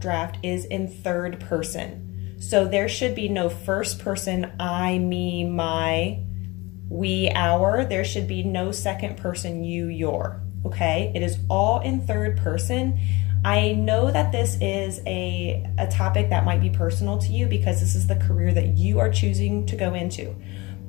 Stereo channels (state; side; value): quieter; right; 23.4 dB